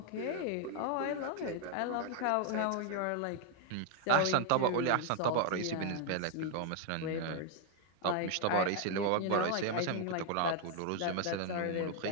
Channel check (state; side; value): different; both; correlation 0.00